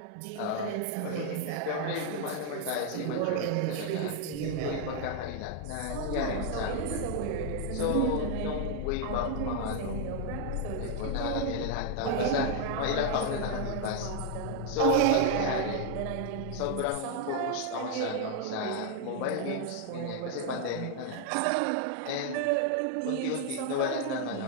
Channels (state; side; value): different; both; correlation 0.00